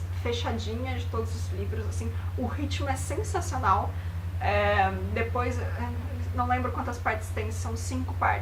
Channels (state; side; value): identical; both; correlation 1.00